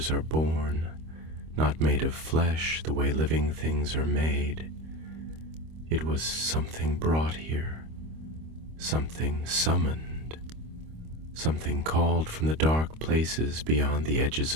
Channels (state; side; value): late; left; 25 ms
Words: are born, not made of flesh the way living things are made. It was something brought here, something summoned, something called from the dark places beyond the edges